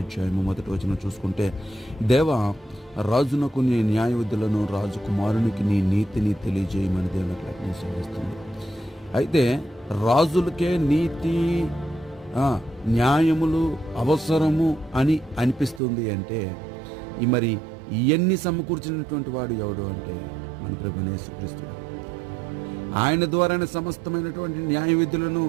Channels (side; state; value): left; drops out; at 15.8 s